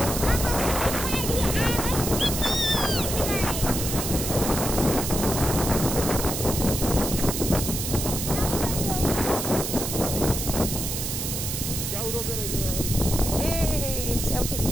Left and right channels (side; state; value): right; noise; hiss, 3 dB below the sound